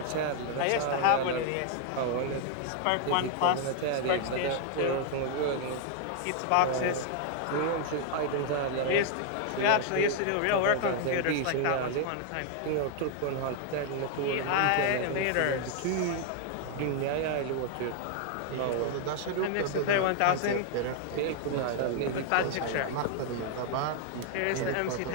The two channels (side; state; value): both; different; correlation 0.00